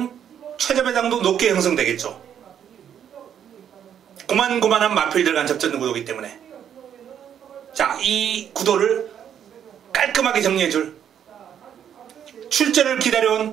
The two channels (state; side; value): quieter; left; 9.1 dB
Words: 최저 배당도 높게 형성되겠죠. 고만고만한 마필들 간 접전 구도이기 때문에 자, 이 구도를 깔끔하게 정리해줄 출전을